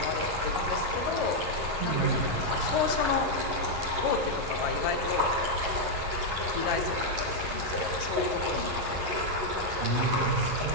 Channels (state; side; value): late; left; 11 ms